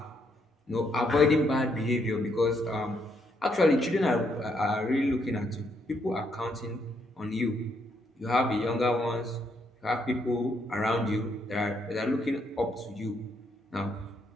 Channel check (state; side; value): normal; both; correlation 0.74